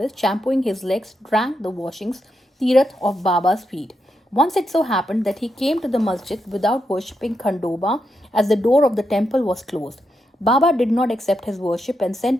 shampooing his legs, drank the washings, tirath of Baba's feet. Once it so happened that he came to the masjid without worshipping Khandoba, as the door of the temple was closed. Baba did not accept his worship and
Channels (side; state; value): both; normal; correlation 0.84